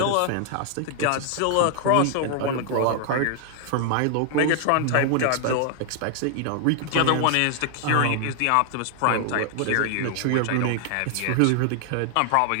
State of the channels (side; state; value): both; different; correlation 0.00